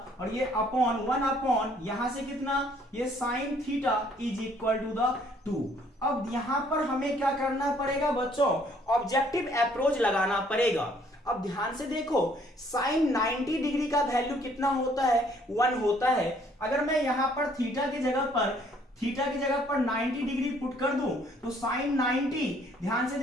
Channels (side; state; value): both; normal; correlation 0.62